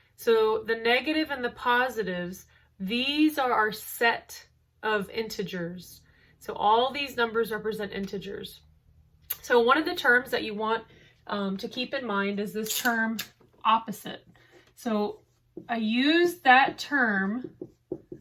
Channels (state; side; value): identical; both; correlation 1.00